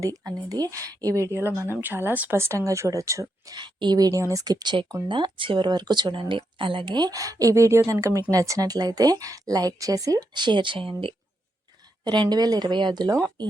అనేది ఈ వీడియోలో మనం చాలా స్పష్టంగా చూడొచ్చు. ఈ వీడియోని స్కిప్ చేయకుండా చివరి వరకు చూడండి. అలాగే ఈ వీడియో కనుక మీకు నచ్చినట్లయితే లైక్ చేసి షేర్ చేయండి. 2025లో ఈ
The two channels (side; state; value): both; normal; correlation 0.83